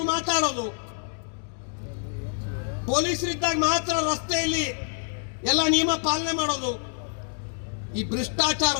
ಮಾತಾಡೋದು, ಪೊಲೀಸರಿದ್ದಾಗ ಮಾತ್ರ ರಸ್ತೆಯಲ್ಲಿ ಎಲ್ಲ ನಿಯಮ ಪಾಲನೆ ಮಾಡೋದು, ಈ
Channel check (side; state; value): right; silent; digital silence